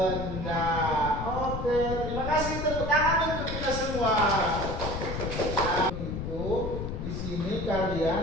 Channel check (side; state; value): left; noise; rumble, 4 dB below the sound